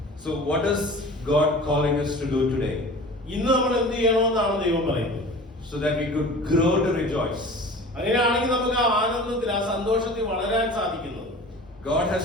So what is God calling us to do today? ഇന്ന് നമ്മൾ എന്ത് ചെയ്യണമെന്നാണ് ദൈവം പറയുന്നത്? So that we could grow to rejoice. അങ്ങനെയാണെങ്കിൽ നമുക്ക് ആ ആനന്ദത്തിൽ, ആ സന്തോഷത്തിൽ വളരാൻ സാധിക്കുന്നത്. God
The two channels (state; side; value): normal; both; correlation 0.39